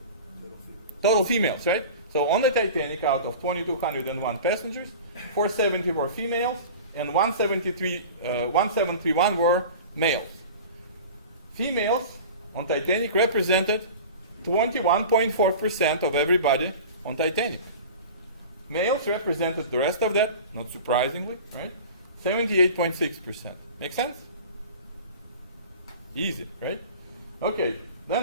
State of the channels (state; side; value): inverted; both; correlation -0.37